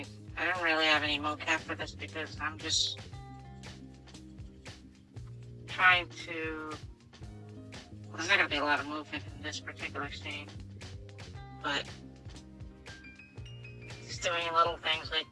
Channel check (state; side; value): identical; both; correlation 1.00